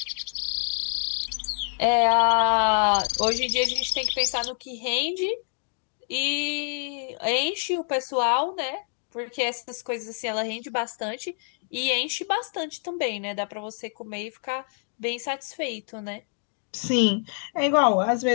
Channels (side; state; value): right; silent; 60 dB below the other